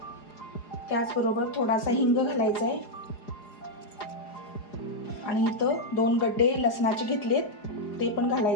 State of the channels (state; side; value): late; right; 4.9 ms